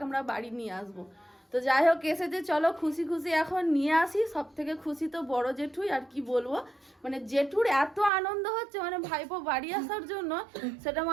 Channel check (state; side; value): drops out; left; at 8.1 s